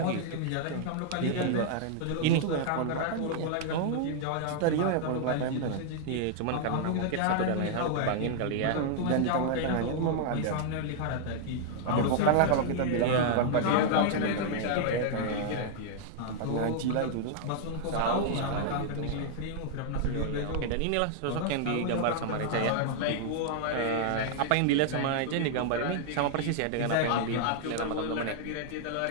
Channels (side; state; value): both; different; correlation -0.01